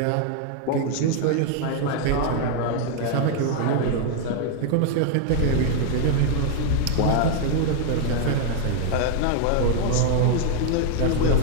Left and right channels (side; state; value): both; different; correlation 0.00